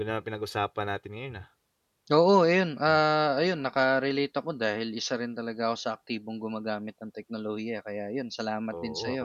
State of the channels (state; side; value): identical; both; correlation 1.00